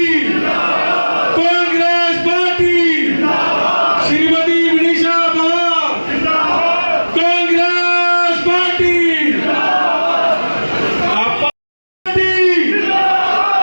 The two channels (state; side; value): inverted; both; correlation -1.00